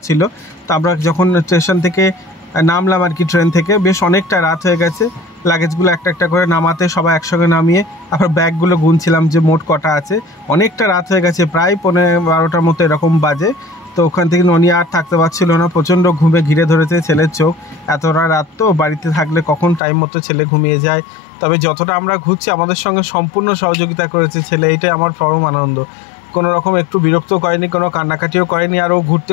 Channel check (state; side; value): drops out; right; at 19.8 s